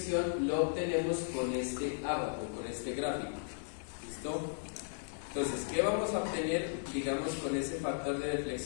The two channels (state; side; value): silent; right; 54 dB below the other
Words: lo obtenemos con este abaco, con este gráfico. ¿Listo? Entonces, ¿qué vamos a obtener, digamos, con ese factor de